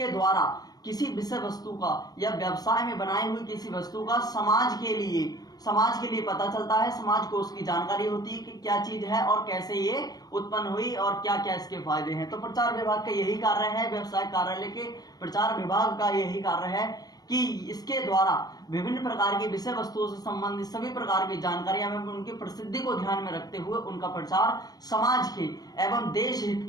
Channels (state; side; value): late; right; 0.19 ms